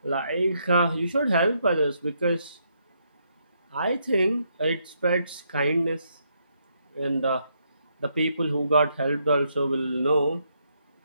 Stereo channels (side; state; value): both; inverted; correlation -0.76